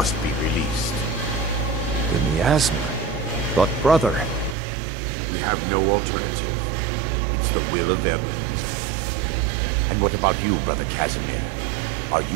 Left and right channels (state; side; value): drops out; left; at 4.5 s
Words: be released. The miasma? But brother... We have no alternative. It's the will of Vermina. And what about you, Brother Casimir? Are